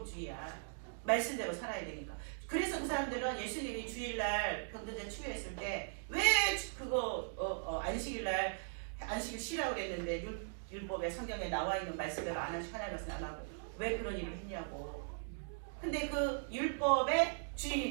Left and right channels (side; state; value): left; silent; digital silence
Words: 말씀대로 살아야 되니까. 그래서 그 사람들은 예수님이 주일날 병든자 치유했을 때 왜 그거 안식일날 안식일 쉬라고 그랬는데 율법에 성경에 나와 있는 말씀대로 안 하시고 하나님 말씀 안 하고 왜 그런 일을 했냐고. 근데 그 율법의